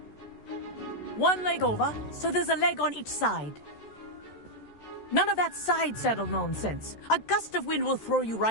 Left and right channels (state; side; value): late; right; 14 ms